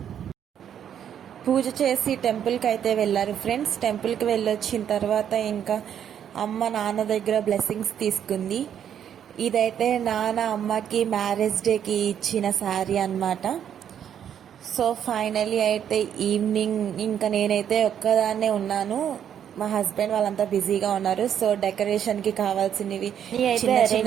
పూజ చేసి టెంపుల్కి అయితే వెళ్ళారు ఫ్రెండ్స్. టెంపుల్కి వెళ్ళొచ్చిన తర్వాత ఇంకా అమ్మ నాన్న దగ్గర బ్లెస్సింగ్స్ తీసుకుంది. ఇదైతే నాన్న అమ్మకి మ్యారేజ్ డేకి ఇచ్చిన శారీ అనమాట. సో ఫైనలీ అయితే ఈవినింగ్ ఇంకా నేనైతే ఒక్కదాన్నే ఉన్నాను. మా హస్బెండ్ వాళ్ళంతా బిజీగా ఉన్నారు. సో డెకరేషన్కి కావాల్సినవి అయితే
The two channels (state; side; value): quieter; left; 9.2 dB